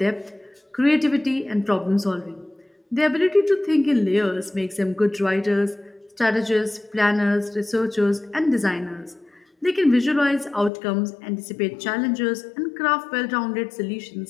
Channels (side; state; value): right; drops out; at 10.7 s